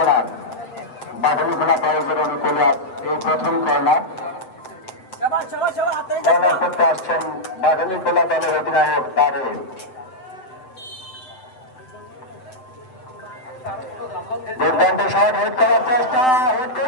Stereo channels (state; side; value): late; right; 7.8 ms